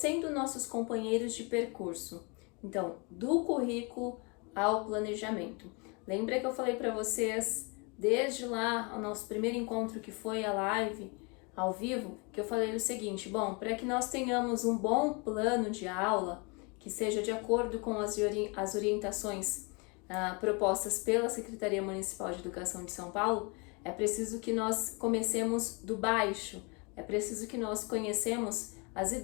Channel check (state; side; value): quieter; right; 31.1 dB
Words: nossos companheiros de percurso. Então, do currículo ao planejamento. Lembra que eu falei para vocês desde lá, o nosso primeiro encontro, que foi a live ao vivo, que eu falei o seguinte: bom, para que nós tenhamos um bom plano de aula, que seja de acordo com as orientações propostas pela Secretaria Municipal de Educação de São Paulo, é preciso que nós comecemos do baixo, é preciso que nós conhecemos as